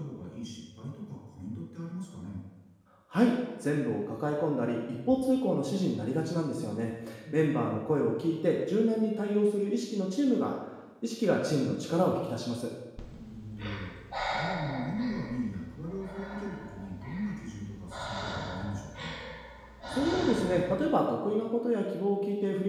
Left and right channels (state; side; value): identical; both; correlation 1.00